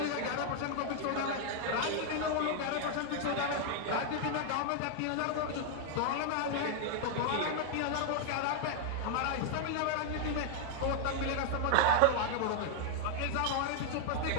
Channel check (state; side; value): different; both; correlation 0.00